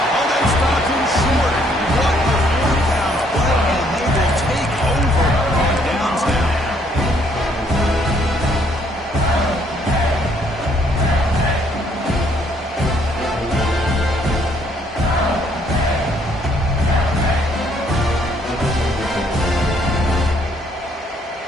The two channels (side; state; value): both; normal; correlation 0.67